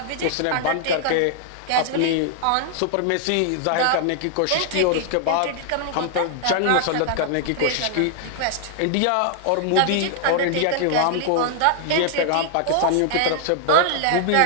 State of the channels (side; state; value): both; different; correlation 0.00